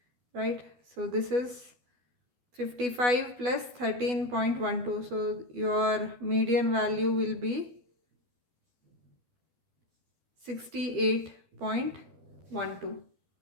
right? So this is 55 plus 13.12. So your median value will be 68.12.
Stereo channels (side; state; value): left; late; 12 ms